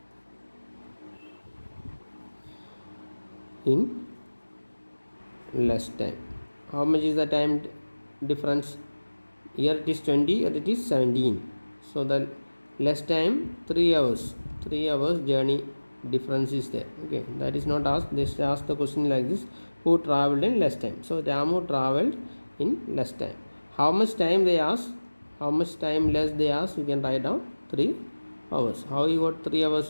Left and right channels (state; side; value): inverted; both; correlation -1.00